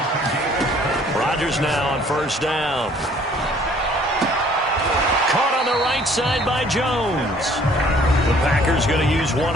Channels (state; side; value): normal; both; correlation 0.57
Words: Rodgers now on first down. Caught on the right side by Jones. The Packers going to use one